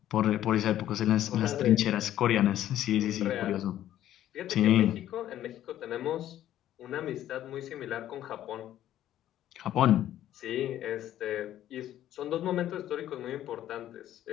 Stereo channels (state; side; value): quieter; right; 12.3 dB